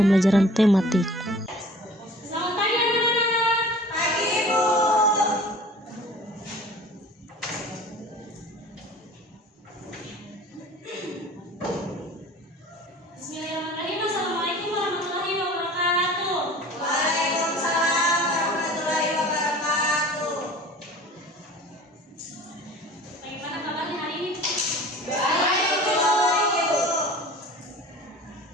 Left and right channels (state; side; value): normal; both; correlation 0.44